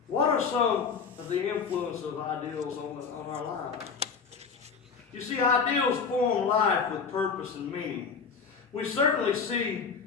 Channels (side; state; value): right; quieter; 5.6 dB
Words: What are some of the influence of ideals on our lives? You see, ideals form life with purpose and meaning. We certainly see,